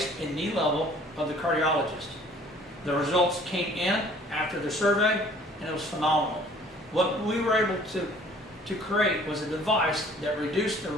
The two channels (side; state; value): both; normal; correlation 0.54